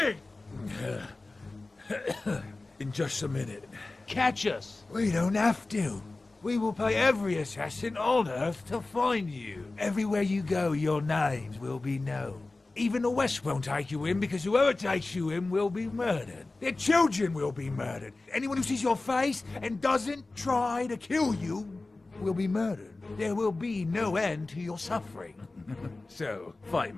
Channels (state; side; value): quieter; right; 3.2 dB